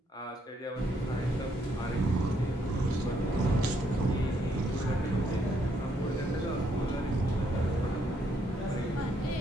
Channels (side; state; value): both; normal; correlation 0.72